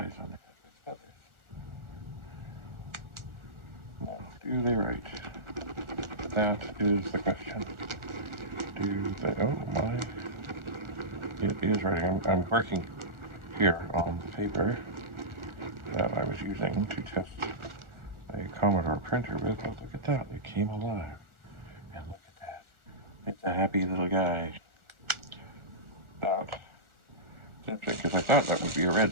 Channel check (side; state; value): left; late; 1.4 ms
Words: on their head with feathers. Now, do they right? That is the question. Do they? Oh my! It is writing. I'm working here on the paper that I was using to test a Commodore printer with. But look at that! It came alive, and look at that! It's a happy little guy. That interesting because I thought that would be a